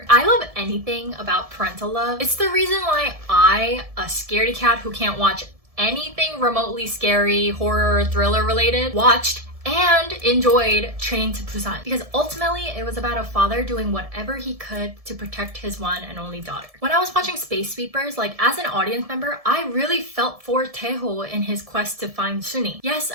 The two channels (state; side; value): late; left; 1.7 ms